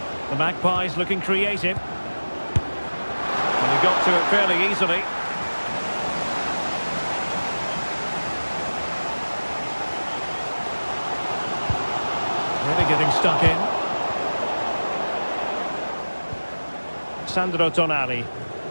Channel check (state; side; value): inverted; both; correlation -1.00